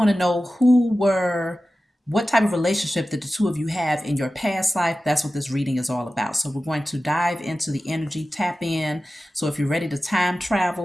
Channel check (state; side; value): normal; both; correlation 0.94